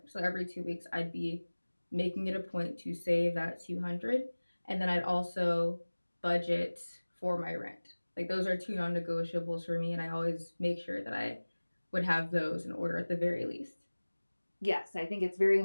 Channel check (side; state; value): both; inverted; correlation -1.00